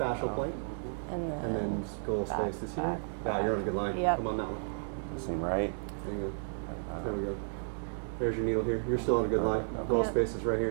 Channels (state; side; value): silent; left; digital silence